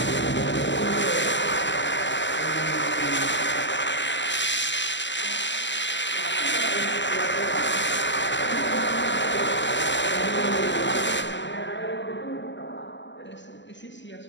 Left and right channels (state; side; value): late; right; 0.53 ms